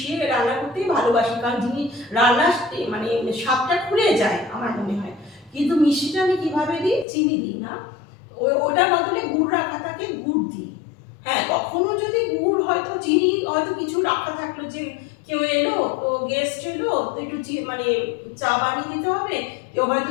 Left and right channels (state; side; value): drops out; right; at 7.1 s